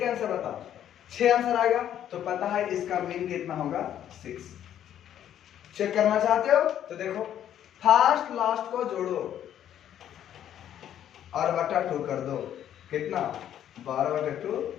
आंसर बताओ। 6 आंसर आएगा, तो पता है इसका मीन कितना होगा? 6। चेक करना चाहते हो तो देखो, फर्स्ट लास्ट को जोड़ो और बटा 2 कर दो, कितना? 12/2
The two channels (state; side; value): quieter; right; 10.6 dB